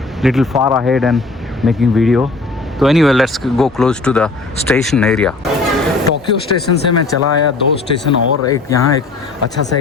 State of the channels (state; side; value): quieter; right; 3.6 dB